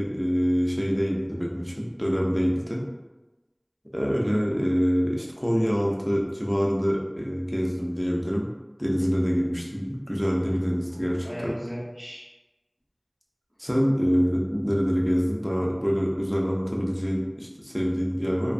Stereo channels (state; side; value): identical; both; correlation 1.00